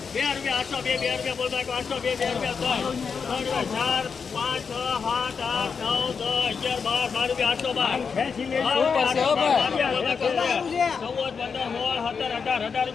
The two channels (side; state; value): right; quieter; 5.8 dB